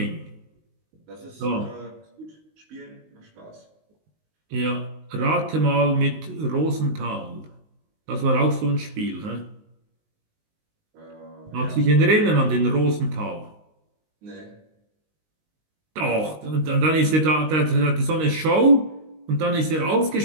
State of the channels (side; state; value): left; late; 19 ms